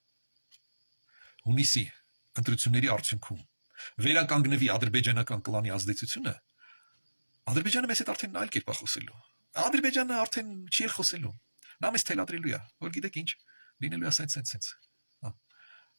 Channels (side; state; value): both; inverted; correlation -1.00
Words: հունիսի ընտրությունների արդյունքում վերականգնվի ադրբեջանական կլանի ազդեցությունը, Ադրբեջանը մեզ հետ արդեն այլ կերպ է խոսելու։ Ադրբեջանը արդեն չի խոսելու։ Նա մեզ թելադրելու է, որ գիտեք ինչ, լինելու է սենց։